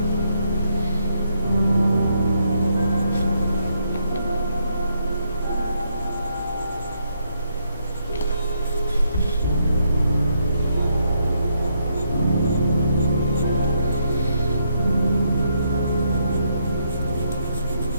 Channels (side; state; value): both; inverted; correlation -0.76